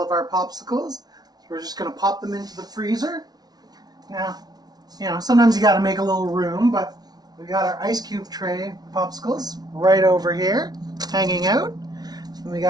our popsicles. So we're just going to pop them into the freezer. Now, sometimes you got to make a little room, but we got our ice cube tray popsicles right over here, hanging out. And we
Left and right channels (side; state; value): left; late; 0.19 ms